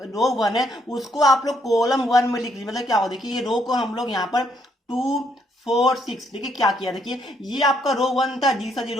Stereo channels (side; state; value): both; normal; correlation 0.72